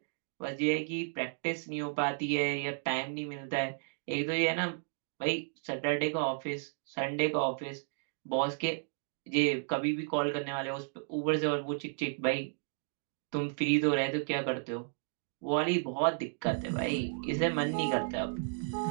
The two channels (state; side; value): silent; left; digital silence